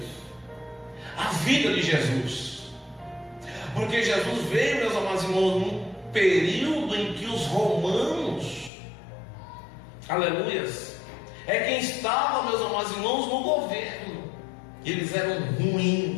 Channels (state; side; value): drops out; right; at 8.7 s